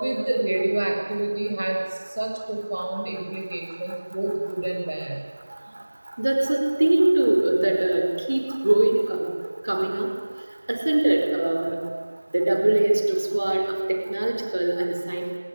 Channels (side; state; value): both; inverted; correlation -1.00